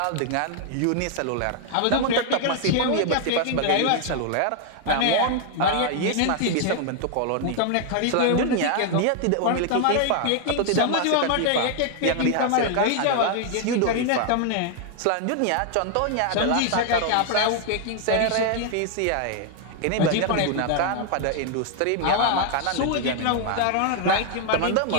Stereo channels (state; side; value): different; both; correlation 0.00